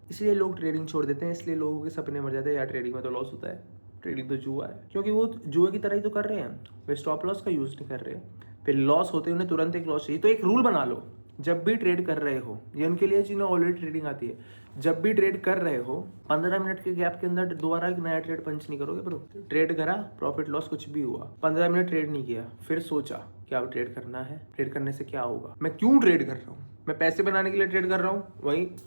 इसलिए लोग ट्रेडिंग छोड़ देते हैं, इसलिए लोगों के सपने मर जाते हैं यार ट्रेडिंग में तो लॉस होता है, ट्रेडिंग तो जुआ है। क्योंकि वो जुए की तरह ही तो कर रहे हैं, वे स्टॉप लॉस का यूज नहीं कर रहे। फिर लॉस होते उन्हें तुरंत एक लॉस चाहिए। तो एक रूल बना लो जब भी ट्रेड कर रहे हो, ये उनके लिए जिन्हें ऑलरेडी ट्रेडिंग आती है, जब भी ट्रेड कर रहे हो 15 मिनट के गैप के अंदर दोबारा एक नया ट्रेड पंच नहीं करोगे ब्रो। ट्रेड करा, प्रॉफिट लॉस कुछ भी हुआ, 15 मिनट ट्रेड नहीं किया, फिर सोचा क्या अब ट्रेड करना है, ट्रेड करने से क्या होगा, मैं क्यों ट्रेड कर रहा हूँ, मैं पैसे बनाने के लिए ट्रेड कर रहा हूँ, वही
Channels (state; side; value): inverted; both; correlation -1.00